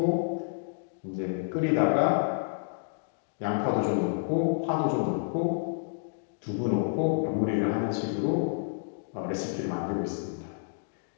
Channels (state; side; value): silent; right; digital silence